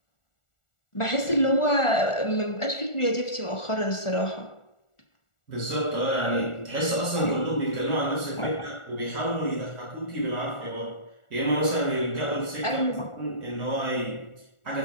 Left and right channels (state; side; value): late; right; 1.4 ms